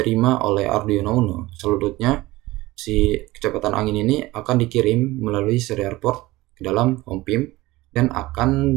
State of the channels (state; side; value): quieter; left; 19.1 dB